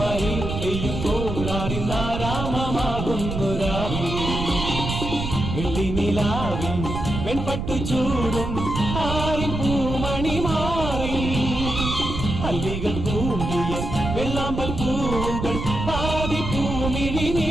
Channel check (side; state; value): right; noise; rumble, 4 dB below the sound